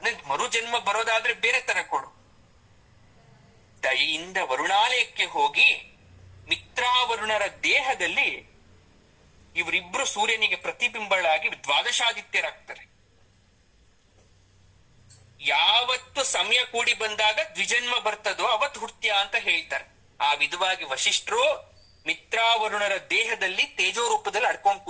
ನನ್ಗೆ ಮರು ಜನ್ಮ ಬರೋದಾದ್ರೆ ಬೇರೆ ತರ ಕೊಡು. ದಯೆಯಿಂದ ವರುಣಾಲಯಕ್ಕೆ ಹೋಗಿ ಮಿತ್ರಾವರುಣರ ದೇಹದಲ್ಲಿ ಇವರಿಬ್ರು ಸೂರ್ಯನಿಗೆ ಪ್ರತಿಬಿಂಬಳಾಗಿ ದ್ವಾದಶಾದಿತ್ಯರಾಗ್ತಾರೆ. ಯಾವತ್ತು ಸಮಯ ಕೂಡಿ ಬಂದಾಗ ದ್ವಿಜನ್ಮ ಬರ್ತದೋ ಅವತ್ತು ಹುಟ್ಟ್ಯಾ ಅಂತ ಹೇಳ್ತಾರೆ. ಆ ವಿಧವಾಗಿ ವಶಿಷ್ಠರು ಮಿತ್ರಾವರುಣರ ದೇಹದಲ್ಲಿ ತೇಜೋ ರೂಪದಲ್ಲಿ ಅಡ್ಕೊಂಡ್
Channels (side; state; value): both; identical; correlation 1.00